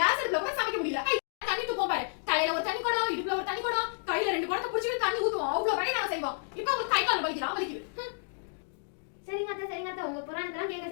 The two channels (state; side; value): silent; right; digital silence